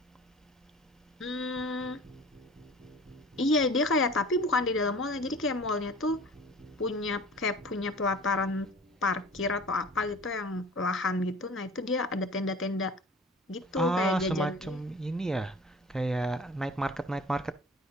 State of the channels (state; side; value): normal; both; correlation 0.43